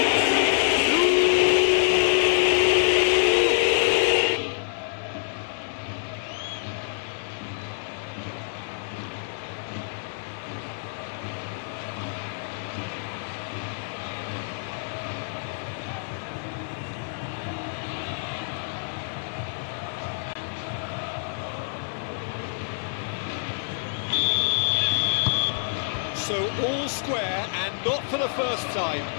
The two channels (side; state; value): right; silent; 61 dB below the other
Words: So all square and not for the first time.